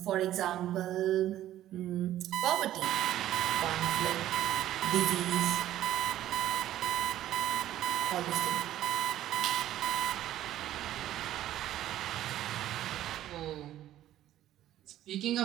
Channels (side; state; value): left; quieter; 13.0 dB